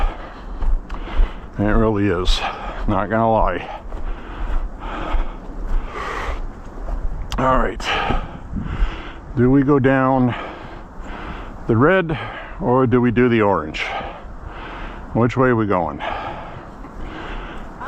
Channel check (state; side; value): identical; both; correlation 1.00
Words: It really is. Not gonna lie. All right. Do we go down the red or do we do the orange? Which way are we going?